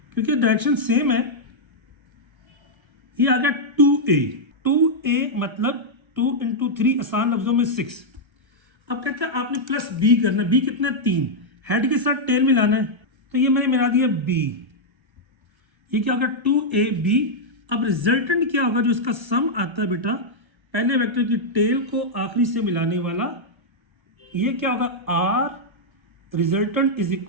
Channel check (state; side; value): late; left; 1.3 ms